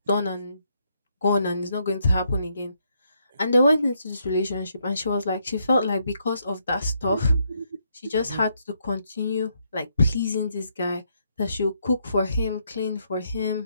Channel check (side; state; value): both; inverted; correlation -0.75